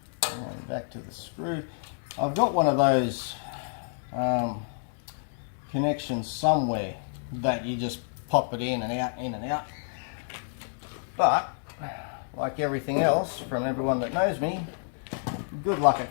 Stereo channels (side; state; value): right; silent; 59 dB below the other